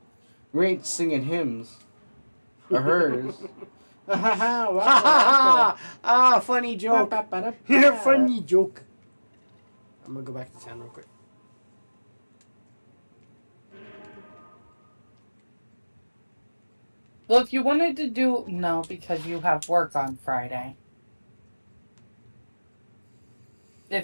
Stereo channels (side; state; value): both; inverted; correlation -1.00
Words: We ain't singing hymns. Or hers. Ah, funny joke. Funny joke. I'm gonna go back to town real quick. Well, if you wanted to do... No, because you have work on Friday.